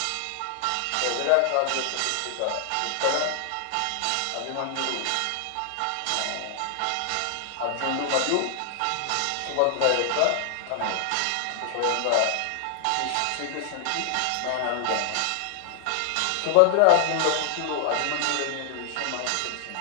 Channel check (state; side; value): different; both; correlation 0.00